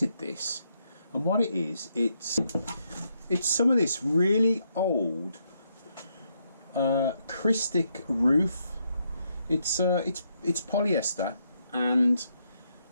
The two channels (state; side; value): inverted; both; correlation -0.77